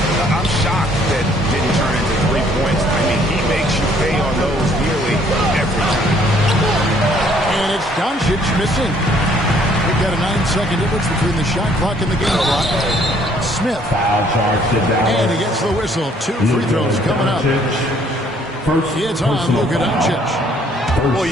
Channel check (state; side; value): normal; both; correlation 0.62